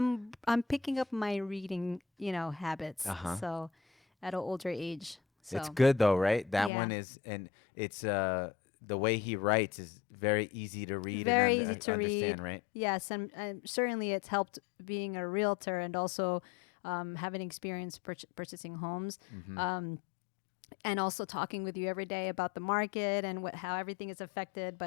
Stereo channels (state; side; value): drops out; right; at 6.7 s